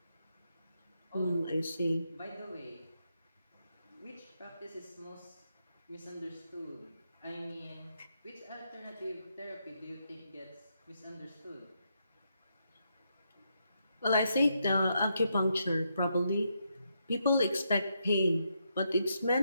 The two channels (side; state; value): both; inverted; correlation -0.80